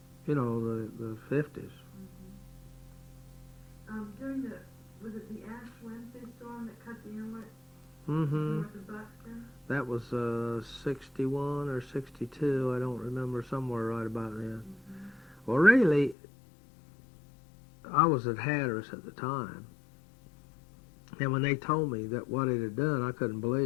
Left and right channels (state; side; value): drops out; right; at 16.2 s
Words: the 50s. During was it the Ash Wednesday storm that cut the inlet Mm-hmm. north of Buxton? That was 61 or 62. I don't remember, somewhere right about then. Well, really, I was at Hatteras at the time, and when they told me that what it had done, I couldn't